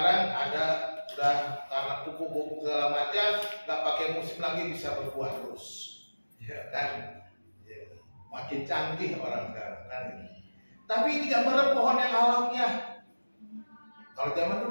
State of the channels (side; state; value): both; inverted; correlation -1.00